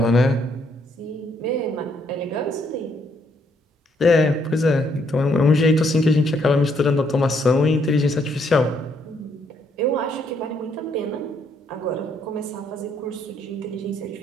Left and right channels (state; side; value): normal; both; correlation 0.71